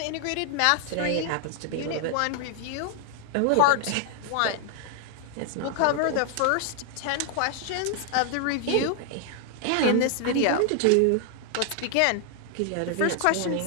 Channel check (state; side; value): different; both; correlation 0.00